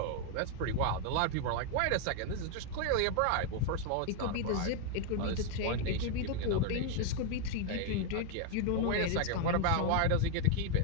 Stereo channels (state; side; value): different; both; correlation 0.00